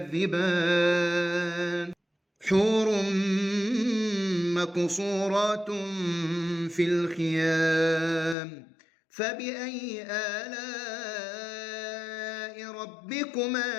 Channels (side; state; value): right; drops out; at 8.3 s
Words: حور مقصورات في الخيام فبأي آلاء